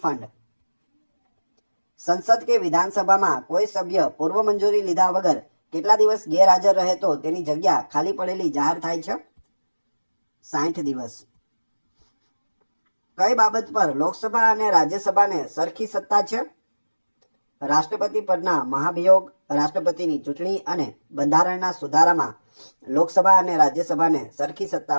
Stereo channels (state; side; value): inverted; both; correlation -1.00